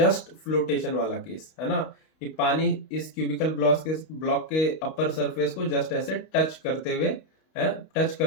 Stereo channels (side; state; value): right; late; 32 ms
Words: फ्लोटेशन वाला केस, है ना, कि पानी इस क्यूबिकल ब्लॉक के अपर सरफेस को जस्ट ऐसे टच करते हुए है, टच